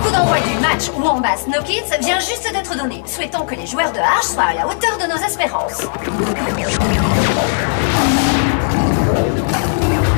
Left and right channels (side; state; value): right; silent; 61 dB below the other